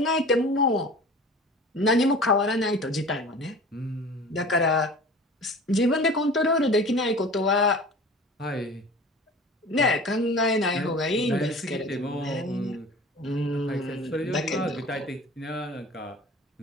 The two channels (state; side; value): normal; both; correlation 0.40